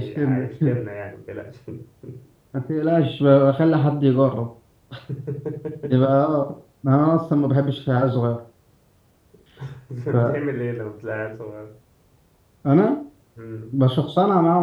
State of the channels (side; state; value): both; identical; correlation 1.00